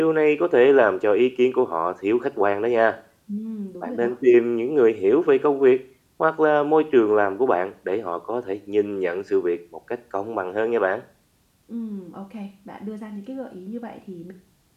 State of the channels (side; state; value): both; identical; correlation 1.00